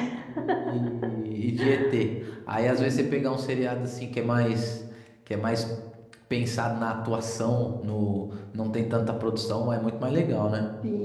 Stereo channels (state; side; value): identical; both; correlation 1.00